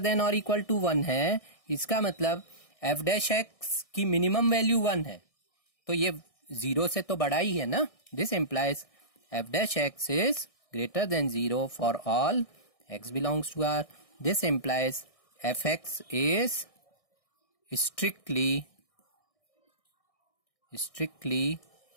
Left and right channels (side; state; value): right; late; 1.6 ms